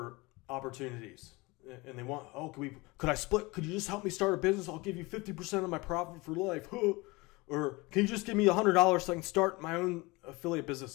opportunities. And they want, oh, could I split? Could you just help me start a business? I'll give you 50% of my profit for life. Or can you just give me $100 so I can start my own affiliate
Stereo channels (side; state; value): right; quieter; 23.9 dB